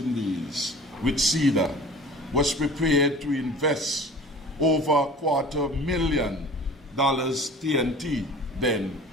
with CEDA, was prepared to invest over $250,000 TNT then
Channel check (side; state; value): both; normal; correlation 0.42